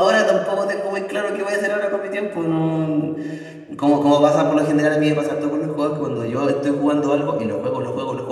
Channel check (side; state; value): both; identical; correlation 1.00